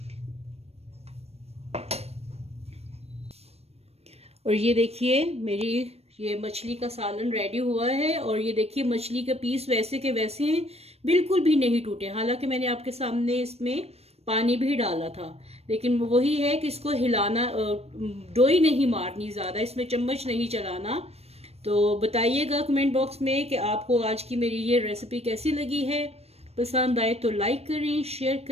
और ये देखिए मेरी ये मछली का सालन रेडी हुआ है। और ये देखिए मछली के पीस वैसे के वैसे हैं, बिल्कुल भी नहीं टूटे। हालांकि मैंने आपके सामने इसमें पानी भी डाला था, लेकिन वही है कि इसको हिलाना, डोई नहीं मारनी ज़्यादा, इसमें चम्मच नहीं चलाना। तो बताइएगा कमेंट बॉक्स में कि आपको आज की मेरी ये रेसिपी कैसी लगी है। पसंद आए तो लाइक करें, शेयर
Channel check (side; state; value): left; late; 0.30 ms